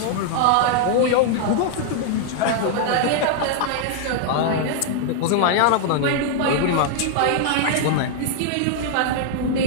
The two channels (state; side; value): different; both; correlation 0.00